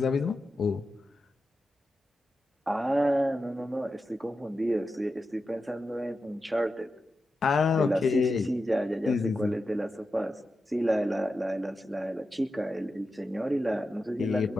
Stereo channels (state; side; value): normal; both; correlation 0.90